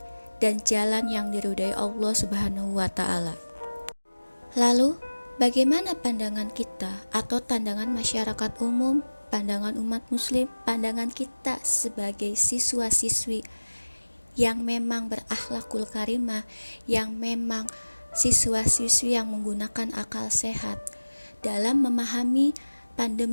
dan jalan yang diridhai Allah Subhanahu wa taala. Lalu, bagaimana pandangan kita atau pandangan masyarakat umum pandangan umat muslim, pandangan kita sebagai siswa-siswi yang memang berakhlakul karimah, yang memang siswa-siswi yang menggunakan akal sehat dalam memahami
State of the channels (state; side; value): inverted; both; correlation -1.00